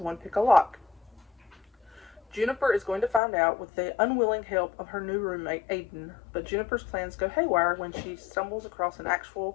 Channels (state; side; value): drops out; right; at 3.2 s